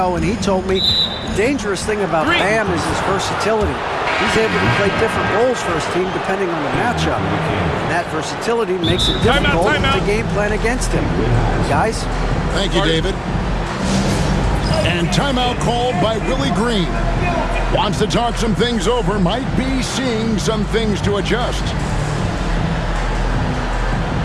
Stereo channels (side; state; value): both; identical; correlation 1.00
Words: and he told me the dangerous thing about Bam is his versatility. He's able to play different roles for his team depending on the matchup. And that versatility makes it difficult to game plan against him. Guys? Thank you, David. And timeout called by Willie Green. Wants to talk some things over, might be seeing some things to adjust.